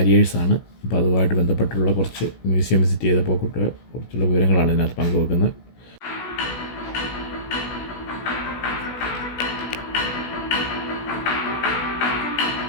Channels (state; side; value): late; right; 16 ms